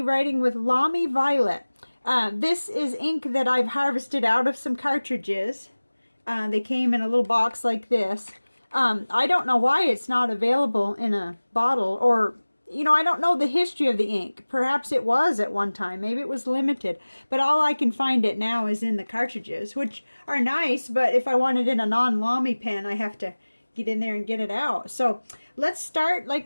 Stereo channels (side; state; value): both; inverted; correlation -1.00